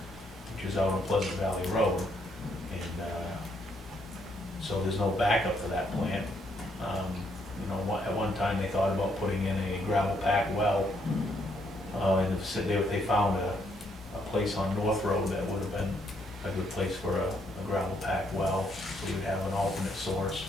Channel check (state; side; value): normal; both; correlation 0.73